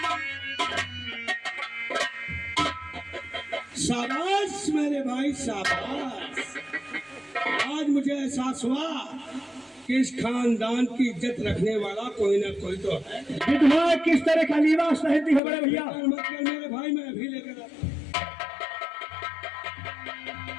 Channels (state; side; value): drops out; right; at 15.4 s